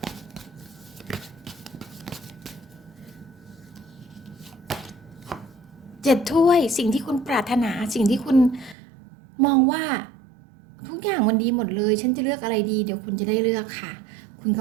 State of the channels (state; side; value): drops out; left; at 8.8 s